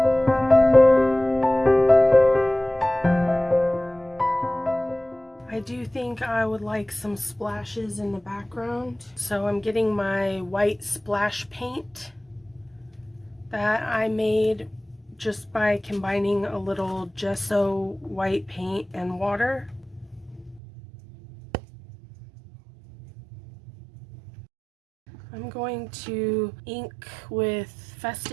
I do think I would like some splashes in the background, so I'm getting my white splash paint that I made just by combining a little gesso white paint and water. I'm going to ink with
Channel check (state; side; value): drops out; left; at 20.6 s